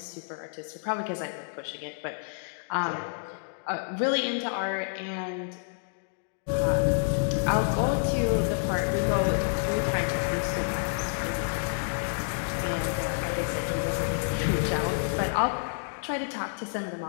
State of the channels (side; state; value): right; silent; digital silence